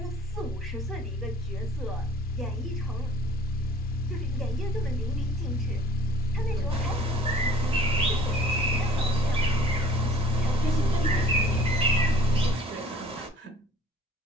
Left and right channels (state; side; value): normal; both; correlation 0.51